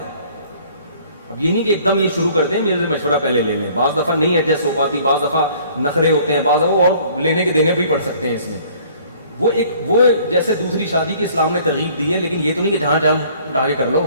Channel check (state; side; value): inverted; both; correlation -0.55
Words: اب یہ نہیں کہ ایک دم یہ شروع کر دیں میرے سے مشورہ پہلے لے لیں، بعض دفعہ نہیں ایڈجسٹ ہو پاتی، بعض دفعہ نخرے ہوتے ہیں، بعض دفعہ اور لینے کے دینے بھی پڑ سکتے ہیں اس میں، وہ جیسے دوسری شادی کی اسلام نے ترغیب دی ہے، لیکن یہ تو نہیں کہ جہاں جہاں اٹھا کے کر لو،